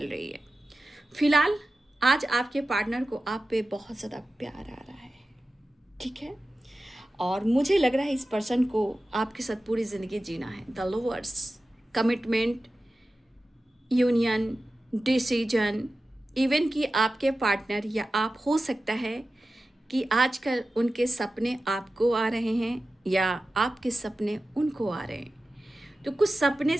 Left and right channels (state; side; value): normal; both; correlation 0.94